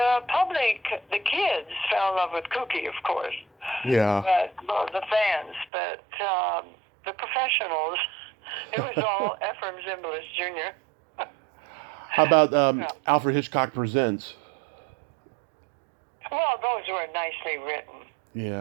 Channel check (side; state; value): left; drops out; at 5.7 s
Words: public, the kids, fell in love with Cookie, of course. Yeah. But the fans, but the professionals, it was all Ephraim Zimbalist Jr. How about Alfred Hitchcock Presents? Well, those were nicely written.